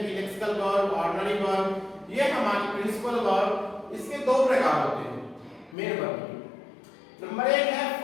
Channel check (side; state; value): right; drops out; at 5.8 s